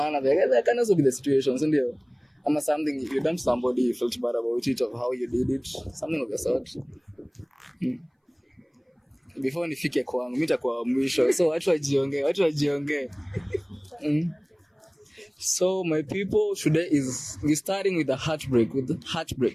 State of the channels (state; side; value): identical; both; correlation 1.00